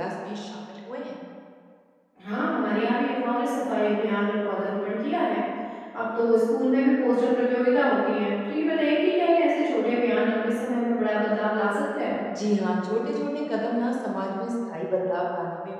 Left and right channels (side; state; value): both; identical; correlation 1.00